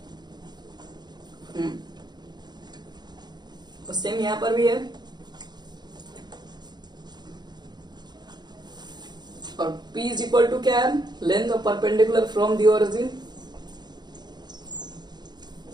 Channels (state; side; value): late; left; 0.21 ms